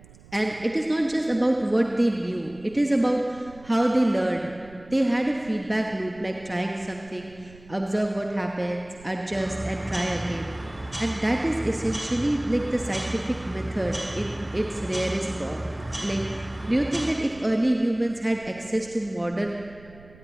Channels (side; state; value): right; noise; rumble, 22 dB below the sound